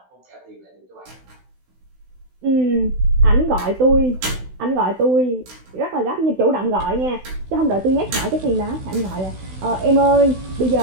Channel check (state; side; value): late; left; 16 ms